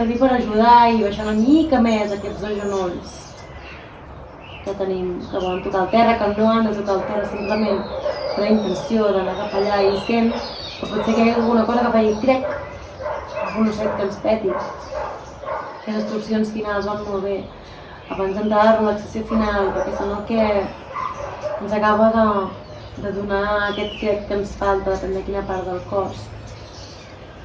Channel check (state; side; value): identical; both; correlation 1.00